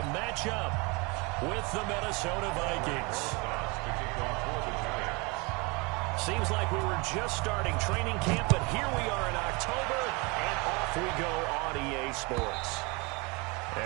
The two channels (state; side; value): quieter; left; 27.7 dB